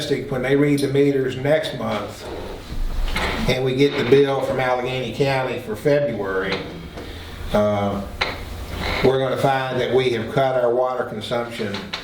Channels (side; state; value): both; identical; correlation 1.00